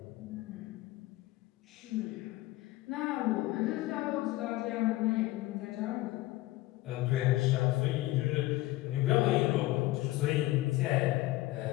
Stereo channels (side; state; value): right; quieter; 18.1 dB